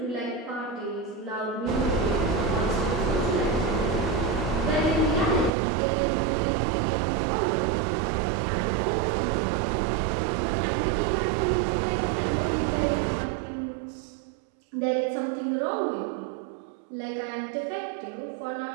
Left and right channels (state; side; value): drops out; left; at 5.5 s